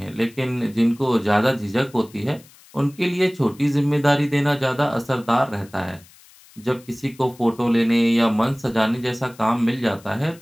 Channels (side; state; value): left; noise; hiss, 25 dB below the sound